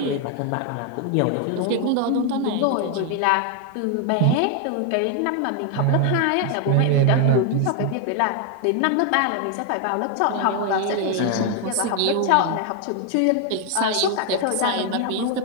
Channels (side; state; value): both; different; correlation 0.00